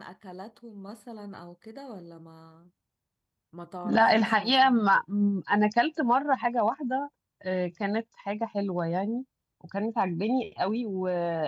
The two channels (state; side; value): identical; both; correlation 1.00